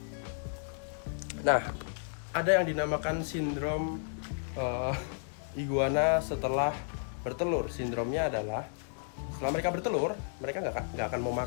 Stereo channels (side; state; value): right; silent; digital silence